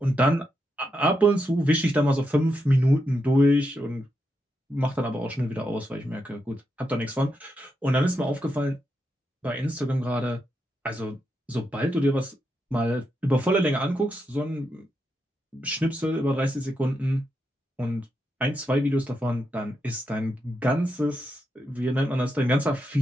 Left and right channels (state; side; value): normal; both; correlation 0.84